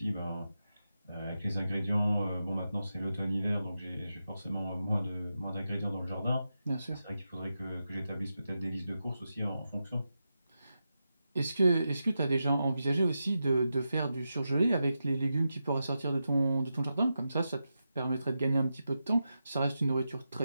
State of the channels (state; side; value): inverted; both; correlation -0.89